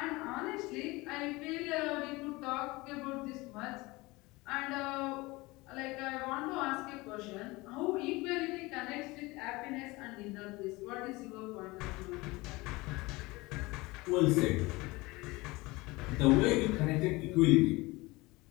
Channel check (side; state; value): right; quieter; 22.4 dB